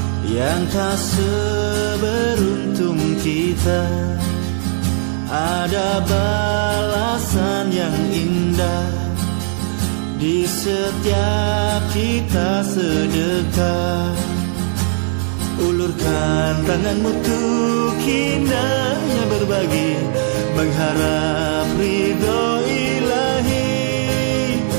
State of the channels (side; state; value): left; silent; 59 dB below the other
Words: yang tak seberuntung kita. Ada balasan yang indah di setiap kita sedekah. Ulurkan tanganmu untuk indahnya berbagi, mengharap ridho ilahi.